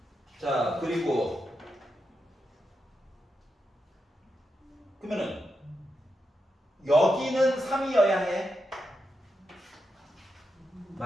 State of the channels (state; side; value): normal; both; correlation 0.86